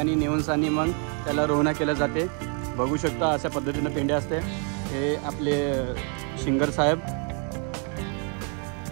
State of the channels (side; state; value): left; quieter; 39.9 dB